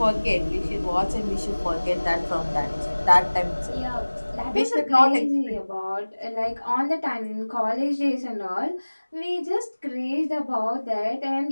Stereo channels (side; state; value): both; inverted; correlation -1.00